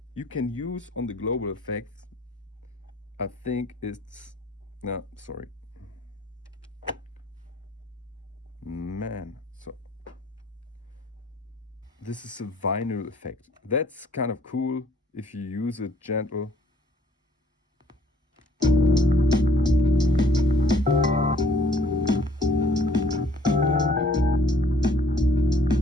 you can use on the global effects, I think, is no, sorry, man. So this is a vinyl effect. That's kind of cool if you use it gentle.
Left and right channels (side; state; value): both; normal; correlation 0.59